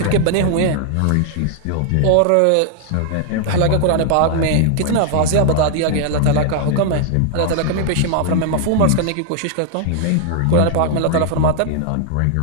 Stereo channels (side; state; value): both; different; correlation 0.00